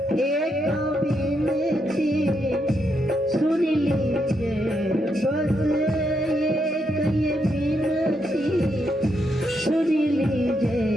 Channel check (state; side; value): normal; both; correlation 0.79